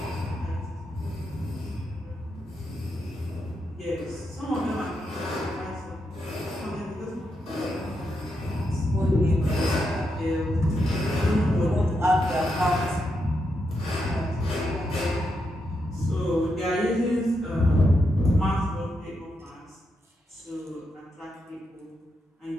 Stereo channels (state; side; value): normal; both; correlation 0.83